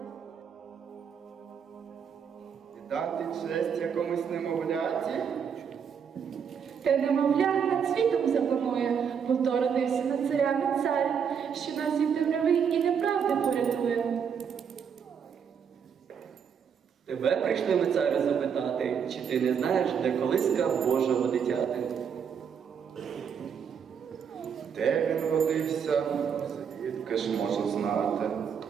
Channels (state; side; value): quieter; left; 7.2 dB